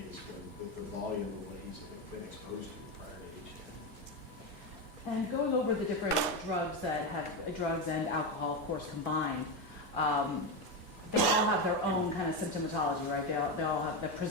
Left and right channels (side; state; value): both; normal; correlation 0.13